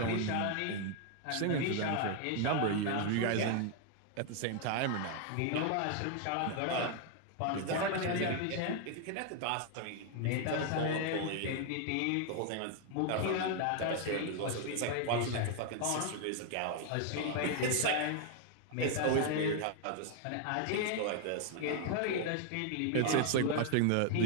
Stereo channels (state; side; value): different; both; correlation 0.00